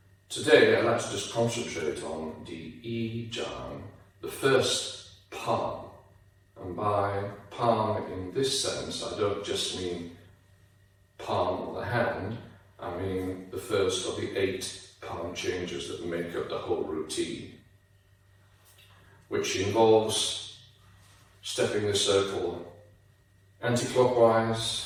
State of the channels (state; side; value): identical; both; correlation 1.00